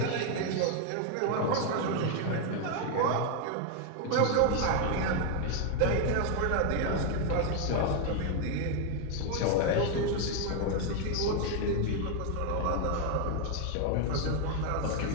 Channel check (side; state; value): both; different; correlation 0.01